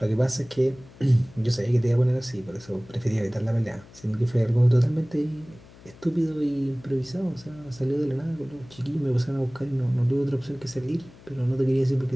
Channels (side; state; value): left; noise; hum, 22 dB below the sound